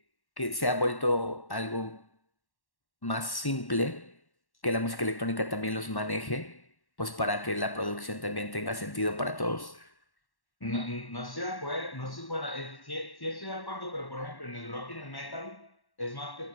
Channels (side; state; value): right; late; 1.1 ms